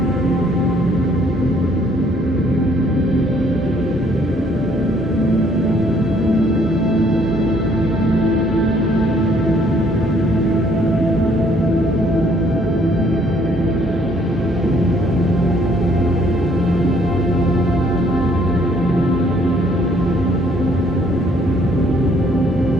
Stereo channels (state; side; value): normal; both; correlation 0.63